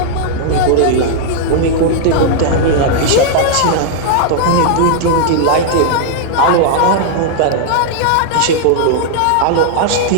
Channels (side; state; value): both; different; correlation -0.01